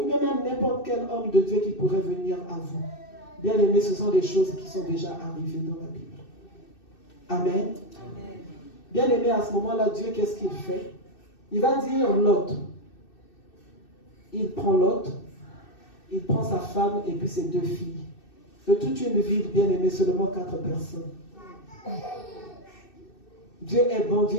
bien même n'importe quel homme de Dieu qui pourrait venir à vous. Bien aimé, ce sont des choses qui sont déjà arrivées dans la Bible. Amen. Amen. Bien aimé, à ce moment-là, Dieu, qu'est-ce qu'il fait? Il va dire Lot. Il prend Lot, il prend sa femme et puis ses 2 filles. De toute une ville, bien aimé, seulement 4 personnes. Dieu est bon, Dieu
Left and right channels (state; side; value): late; right; 2.6 ms